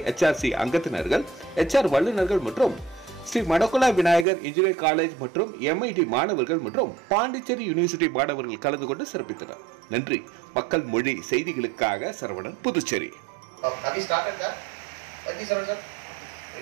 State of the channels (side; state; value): left; drops out; at 4.2 s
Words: அங்கத்தினர்கள், HR வல்லுநர்கள் மற்றும் ஸ்ரீ மடக்குலா விநாயகர் இன்ஜினியரிங் காலேஜ் மற்றும் MIT மாணவர்கள் மற்றும் பாண்டிச்சேரி யூனிவர்சிட்டி மாணவர்கள் கலந்து கொண்டு சிறப்பித்தனர். நன்றி. மக்கள் மொழி செய்திகளுக்காக சரவணன், Puducherry.